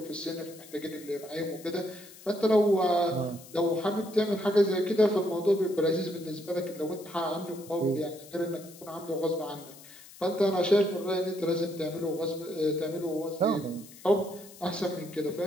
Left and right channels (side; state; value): left; noise; hiss, 19 dB below the sound